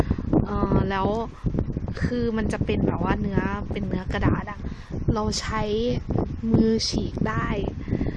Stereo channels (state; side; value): identical; both; correlation 1.00